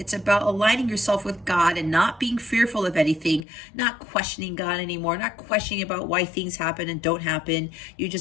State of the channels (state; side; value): drops out; right; at 3.4 s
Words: about aligning yourself with God and not being fearful of anything, not questioning God anymore, not questioning about why things happen and don't happen. You